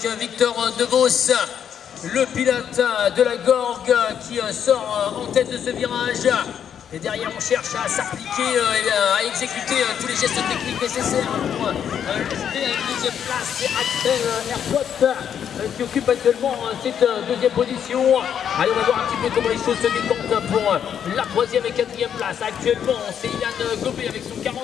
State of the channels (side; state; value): right; quieter; 8.6 dB